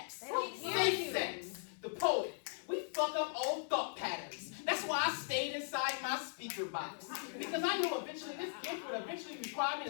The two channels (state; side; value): silent; right; digital silence